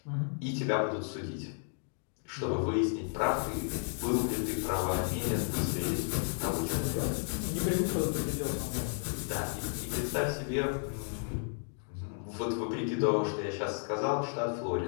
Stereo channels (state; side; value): silent; right; digital silence